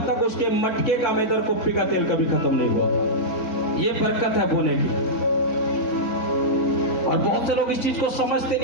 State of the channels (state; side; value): late; right; 4.0 ms